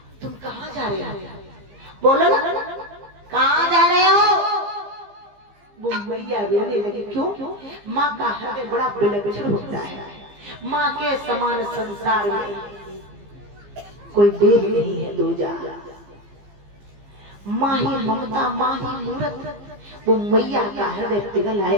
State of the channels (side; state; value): left; late; 15 ms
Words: तुम कहाँ जा रहे हो? बोलो ना, कहाँ जा रहे हो? वो मैया रोने लगी। क्यों? माँ का हृदय बड़ा विलक्षण होता है। माँ के समान संसार में कोई देव नहीं है दूजा। माँ ही ममता, माँ ही मूरत। वो मैया का हृदय पिघल